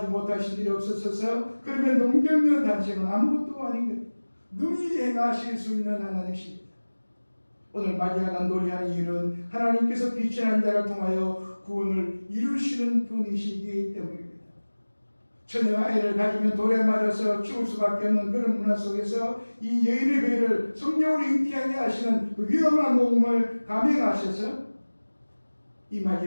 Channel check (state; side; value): inverted; both; correlation -1.00